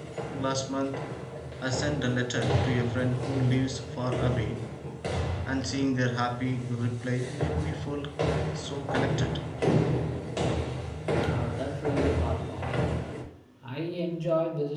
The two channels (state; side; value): identical; both; correlation 1.00